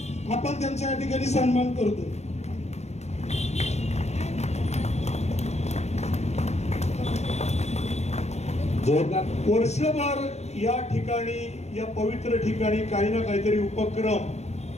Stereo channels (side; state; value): right; late; 0.32 ms